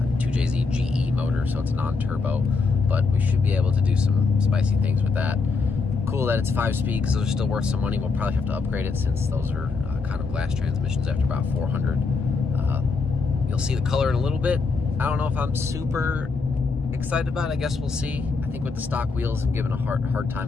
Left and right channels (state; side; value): quieter; right; 4.4 dB